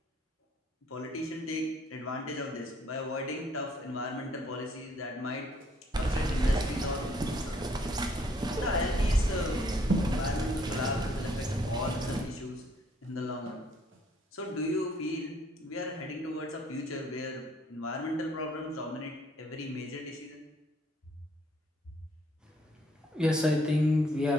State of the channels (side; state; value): both; normal; correlation 0.65